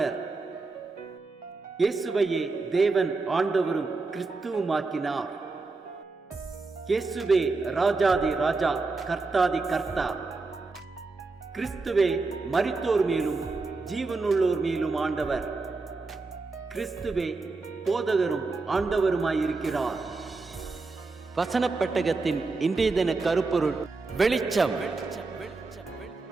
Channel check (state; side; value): quieter; left; 3.8 dB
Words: இயேசுவையே தேவன் ஆண்டவரும் கிறிஸ்துவுமாக்கினார். இயேசுவே ராஜாதி ராஜா, கர்த்தாதி கர்த்தா. கிறிஸ்துவே மரித்தோர் மேலும் ஜீவனுள்ளோர் மேலும் ஆண்டவர். கிறிஸ்துவே போதகரும் ஆண்டவருமாயிருக்கிறார். வசனப் பெட்டகத்தின் இன்றைய தின கருப்பொருள் வெளிச்சம்.